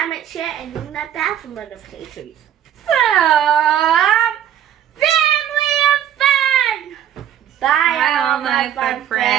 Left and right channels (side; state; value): left; quieter; 10.2 dB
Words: share, and ring that bell for notifications. From Family of Fun! Bye all my fun